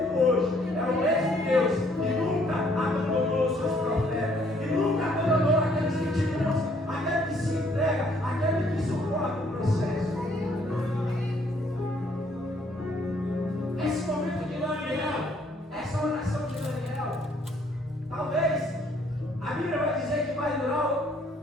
hoje, é o mesmo Deus que nunca abandonou os seus profetas, que nunca abandonou aqueles que te buscam, aquele que se entrega, aquele que suporta o processo. Esse momento de Daniel, essa oração de Daniel, talvez a Bíblia vai dizer que vai durar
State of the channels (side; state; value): both; normal; correlation 0.65